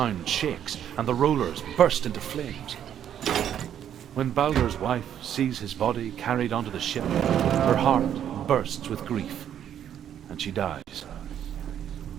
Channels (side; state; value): left; quieter; 9.8 dB